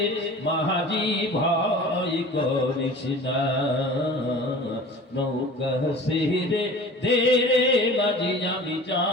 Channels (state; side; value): normal; both; correlation 0.41